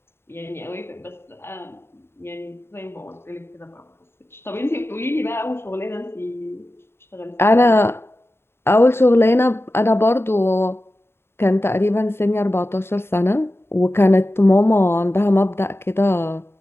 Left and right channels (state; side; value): late; right; 0.11 ms